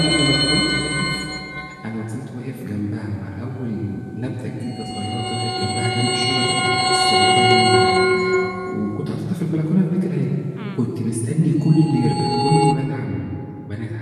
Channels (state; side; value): identical; both; correlation 1.00